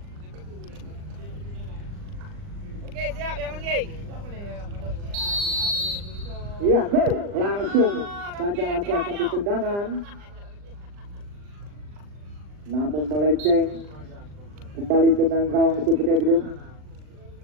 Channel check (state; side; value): late; left; 39 ms